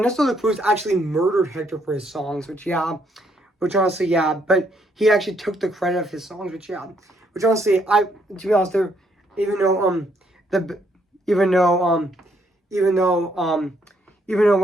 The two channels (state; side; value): normal; both; correlation 0.71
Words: de la Cruz actually murdered Hector for his songs, which honestly but he actually took the credit of his songs, which honestly I to be honest there even though the even though even though even though